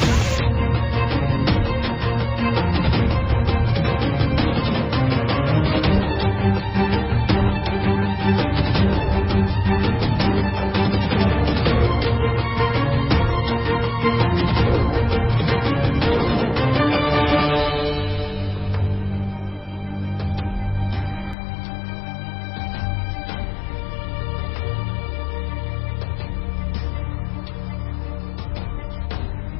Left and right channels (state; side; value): drops out; right; at 21.4 s